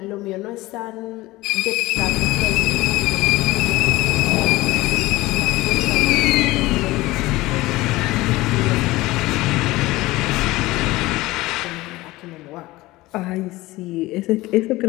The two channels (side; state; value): right; quieter; 19.2 dB